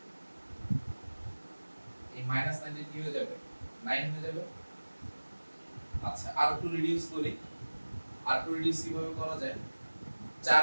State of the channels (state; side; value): inverted; both; correlation -1.00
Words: এই -9 কি হয়ে যাবে 9 হয়ে যাবে। আচ্ছা আর একটু রিডিউস করি, আর একটু রিডিউস কিভাবে করা যায়, 4